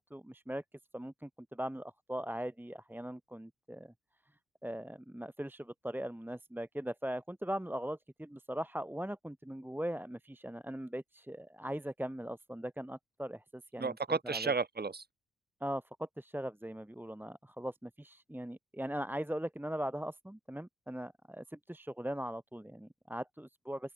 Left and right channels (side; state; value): both; normal; correlation 0.76